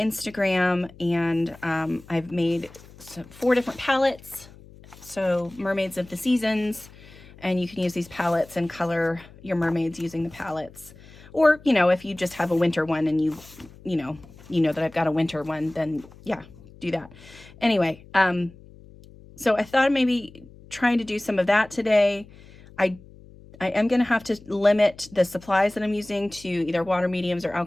and I've made 4 different palettes. So mermaids of the seasons, and you can use these palettes and color your mermaids using the palettes. Or, you know, if you just have a winter one and you know that I've got a winter one, then yeah, do that. Anyway, so I thought maybe trying to do some of that today. I am going to have to limit the supplies that I'm using to either water mediums or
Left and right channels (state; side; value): noise; left; hum, 22 dB below the sound